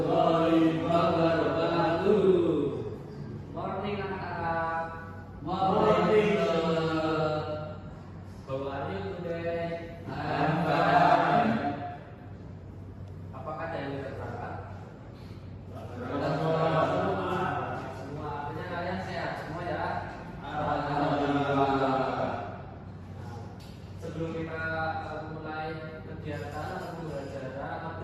wabarakatuh. Morning anak-anak. Morning. How are you today? I'm fine. Apakah ada yang berangkat? Semua. Artinya kalian sehat semua ya? Alhamdulillah. Sebelum kita mulai kegiatan atau belajar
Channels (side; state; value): both; identical; correlation 1.00